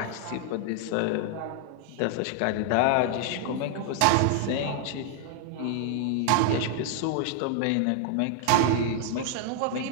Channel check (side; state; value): both; different; correlation 0.00